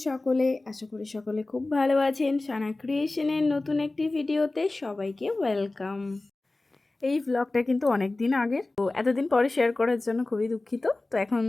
সকলে? আশা করি সকলে খুব ভালো আছেন। সানা ক্রিয়েশনের নতুন একটি ভিডিওতে সবাইকে ওয়েলকাম। এই ভ্লগটা কিন্তু অনেক দিন আগের, তো এতদিন পরে শেয়ার করার জন্য খুবই দুঃখিত। তো এখন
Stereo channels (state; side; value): quieter; right; 3.0 dB